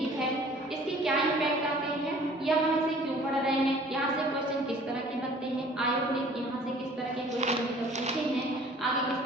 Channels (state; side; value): normal; both; correlation 0.51